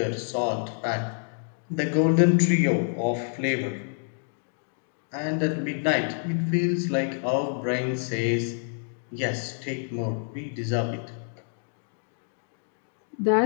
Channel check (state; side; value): silent; right; 60 dB below the other